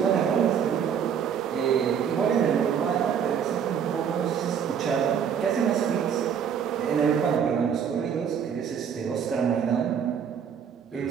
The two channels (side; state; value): left; quieter; 7.8 dB